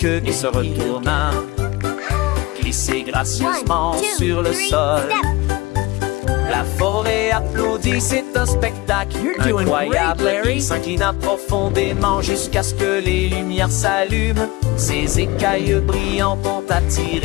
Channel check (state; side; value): quieter; right; 21.3 dB